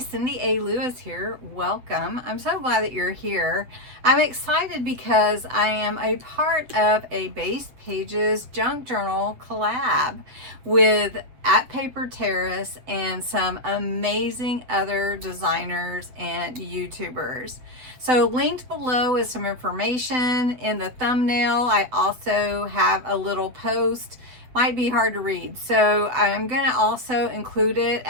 Cindy A. Lewis here. Welcome. I'm so glad that you're here. I'm excited because I am a part of a Base Pages junk journal collab with At Paper Terrace and some amazing other designers and YouTubers. So linked below is some information. In the thumbnail, I also have a little post. Might be hard to read, so I'm going to also include it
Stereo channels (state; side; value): late; left; 8.1 ms